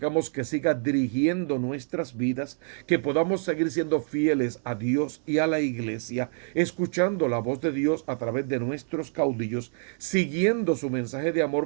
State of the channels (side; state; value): left; silent; 58 dB below the other